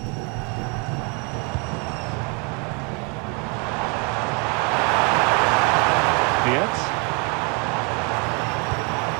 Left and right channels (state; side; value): quieter; left; 33.4 dB